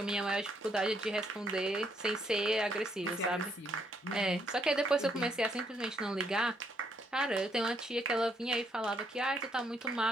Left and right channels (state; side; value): normal; both; correlation 0.72